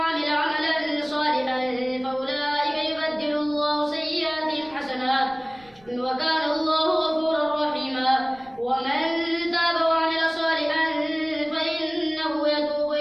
عملا صالحا فأولئك يبدل الله سيئاتهم حسنات وكان الله غفورا رحيما ومن تاب وعمل صالحا فإنه يتوب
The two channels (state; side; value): noise; right; rumble, 27 dB below the sound